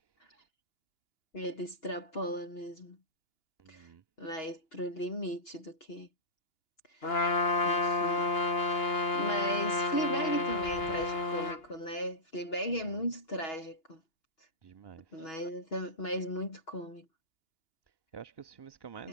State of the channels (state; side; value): late; right; 2.9 ms